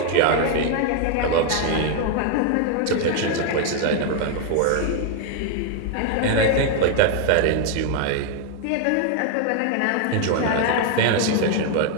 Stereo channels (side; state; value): both; different; correlation 0.00